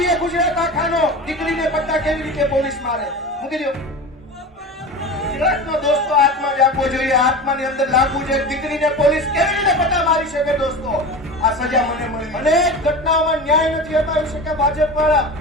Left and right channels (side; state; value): both; normal; correlation 0.30